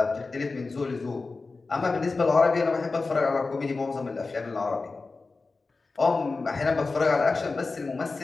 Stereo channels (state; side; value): quieter; right; 3.9 dB